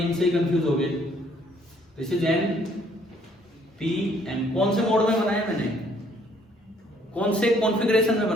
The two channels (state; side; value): normal; both; correlation 0.64